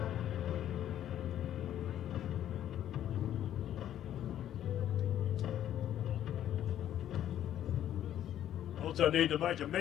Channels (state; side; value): quieter; right; 11.2 dB